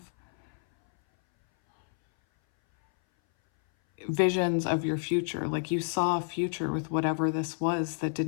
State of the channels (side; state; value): right; silent; 58 dB below the other